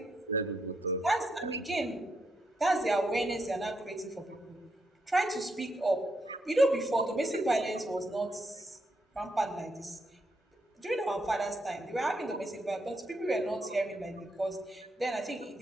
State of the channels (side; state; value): both; normal; correlation 0.80